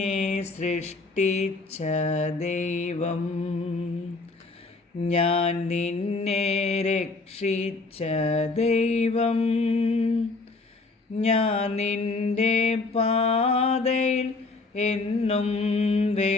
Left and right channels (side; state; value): right; quieter; 3.6 dB